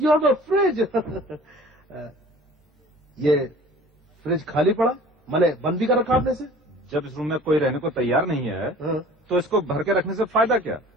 you have a fridge. ये फ्रिज खाली पड़ा, मैंने बंद भी कर रखा आपने से। जब इस रूम में कोई रहने को तैयार नहीं है हाँ। तो इसको भर के रखने से फायदा क्या?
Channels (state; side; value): normal; both; correlation 0.46